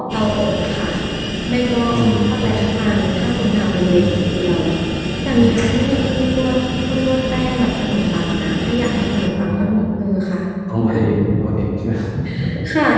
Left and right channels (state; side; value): identical; both; correlation 1.00